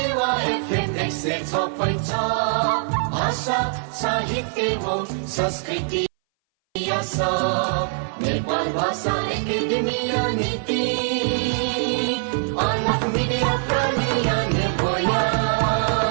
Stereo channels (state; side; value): silent; left; 60 dB below the other